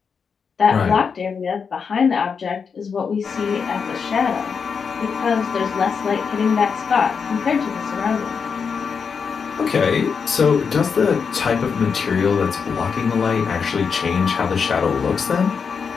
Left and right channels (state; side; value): quieter; right; 6.0 dB